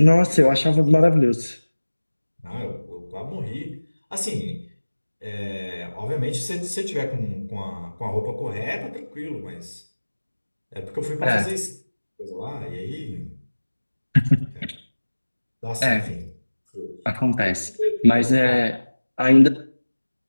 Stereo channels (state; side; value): inverted; both; correlation -1.00